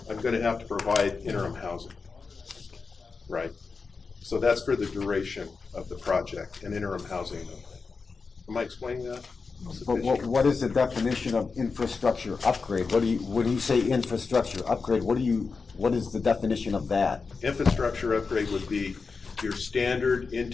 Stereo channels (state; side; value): quieter; right; 4.7 dB